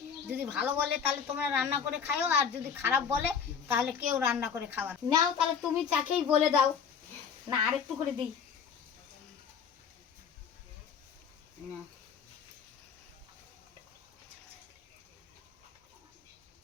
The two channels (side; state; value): right; quieter; 6.9 dB